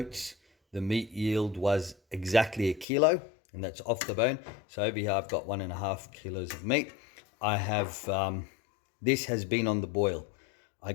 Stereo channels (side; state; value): right; drops out; at 2.9 s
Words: the meat yield was exactly a kilo, and that's off the bone. So over here, I've got 1.5 kilos of meat. I have this has been on the boil. I